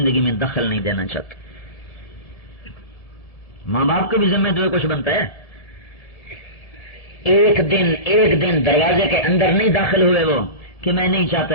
میں دخل نہیں دینا چاہتا. ماں باپ کے بھی ذمہ تو کچھ بنتا ہے. ایک دن دروازے کے اندر نہیں داخل ہوئے وہ کہ میں نہیں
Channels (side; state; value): right; late; 1.7 ms